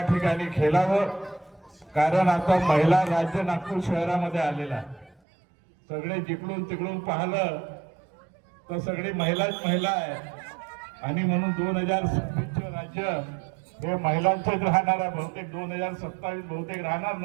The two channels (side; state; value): left; drops out; at 5.2 s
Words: ठिकाणी खेळावं. कारण आता महिला राज्य नागपूर शहरामध्ये आलेला आहे. सगळे जिकडून तिकडून पाहिलं तर सगळी महिलाच महिला आहे आणि म्हणून 2026 राज्य हे महिलांचंच राहणार आहे. बहुतेक 2027 बहुतेक राहणार